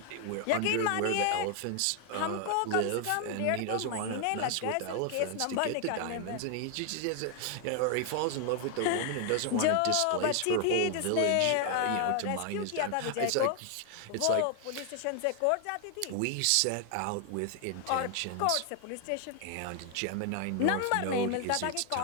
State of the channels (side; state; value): both; different; correlation 0.00